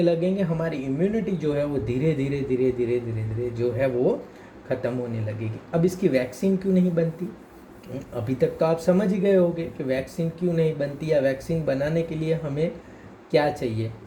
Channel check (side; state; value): both; identical; correlation 1.00